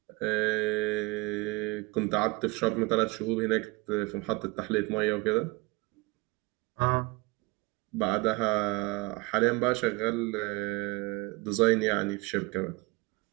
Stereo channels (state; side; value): quieter; left; 24.9 dB